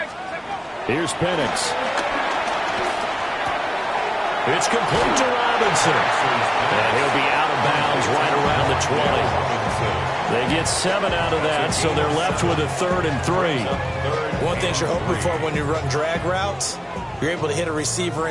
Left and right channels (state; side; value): identical; both; correlation 1.00